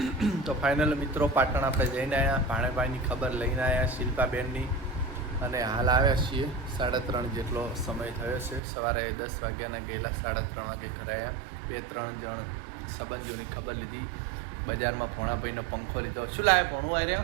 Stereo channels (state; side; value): drops out; left; at 8.6 s